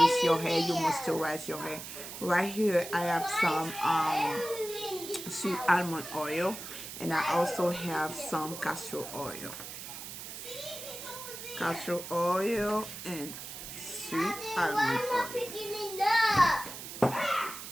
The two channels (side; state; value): right; noise; hiss, 10 dB below the sound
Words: your hair, you moisturize your hair. Right here I have some sweet almond oil, and I also have some castor oil. Castor oil and sweet almond oil.